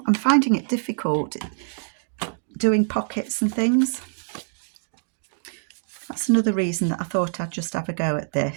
I'm finding it difficult doing pockets and things. That's another reason that I thought I'd just have a go at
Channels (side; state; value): left; silent; digital silence